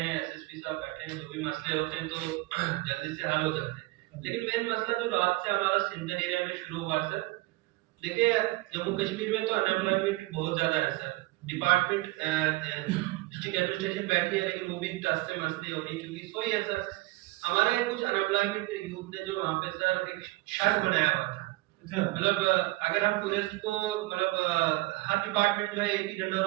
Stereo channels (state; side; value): quieter; left; 21.0 dB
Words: एसएसपी साहब बैठे हैं, जो भी मसले होते हैं तो जल्दी से हल हो जाते हैं। लेकिन मेन मसला जो रात से हमारा सिंधन एरिया में शुरू हुआ सर, देखिए जम्मू कश्मीर में तो अनएम्प्लॉयमेंट बहुत ज्यादा है सर। डिपार्टमेंट डिस्ट्रिक्ट एडमिनिस्ट्रेशन बैठी है लेकिन वो भी टस से मस नहीं हो रही, क्योंकि सोई है सर, हमारे कुछ अनएम्प्लॉयमेंट यूथ ने जो वहाँ पे सर एक शर्त बनाया हुआ था। मतलब अगर हम टूरिस्ट को मतलब हर डिपार्टमेंट में एक ही जनरल